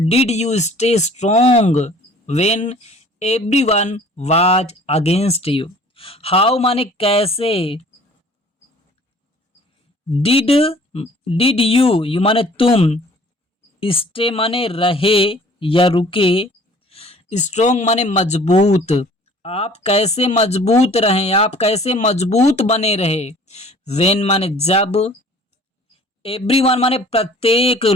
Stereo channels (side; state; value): both; normal; correlation 0.51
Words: you stay strong when everyone was against you. How माने कैसे, डिड, डिड यू माने तुम, स्टे माने रहे या रुके, स्ट्रोंग माने मजबूत, आप कैसे मजबूत रहें, आप कैसे मजबूत बने रहे। वेन माने जब, एवरीवन माने प्रत्येक